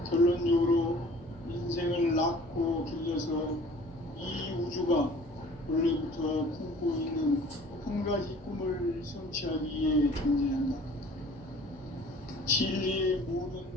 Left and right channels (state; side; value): normal; both; correlation 0.49